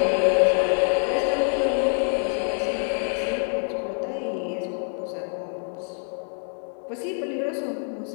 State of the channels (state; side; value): silent; right; 61 dB below the other